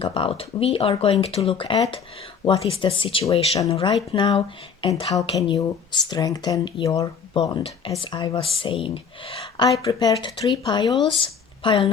about. We are going to look at what is the situation right now and how can you strengthen your bond. As I was saying, I prepared 3 piles. Pile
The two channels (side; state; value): right; quieter; 6.3 dB